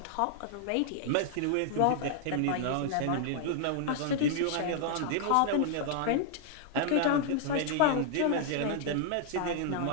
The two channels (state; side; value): different; both; correlation 0.00